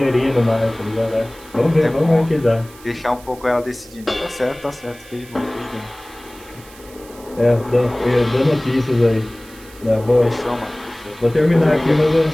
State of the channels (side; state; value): right; noise; hiss, 22 dB below the sound